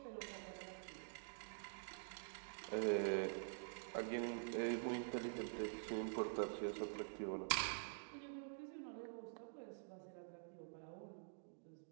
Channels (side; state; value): left; silent; digital silence